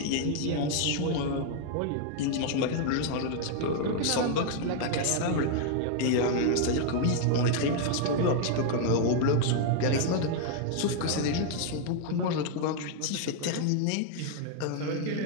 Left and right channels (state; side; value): different; both; correlation 0.00